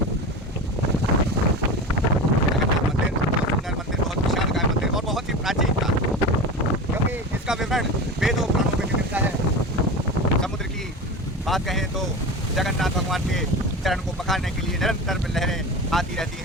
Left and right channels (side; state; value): both; normal; correlation 0.28